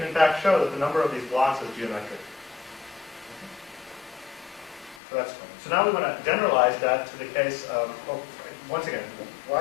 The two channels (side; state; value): right; drops out; at 5.0 s